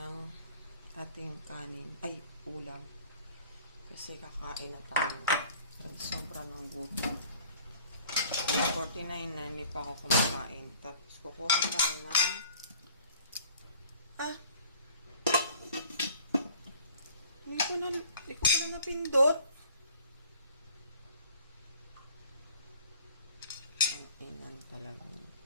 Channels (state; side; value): inverted; both; correlation -0.51